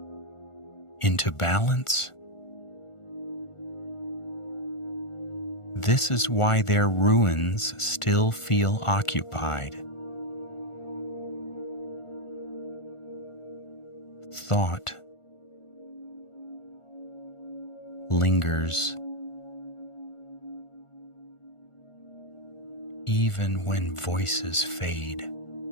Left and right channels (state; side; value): late; right; 1.4 ms